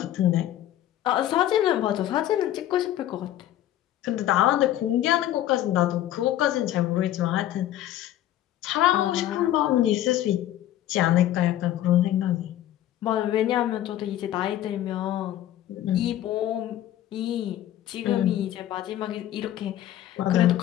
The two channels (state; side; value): quieter; right; 12.8 dB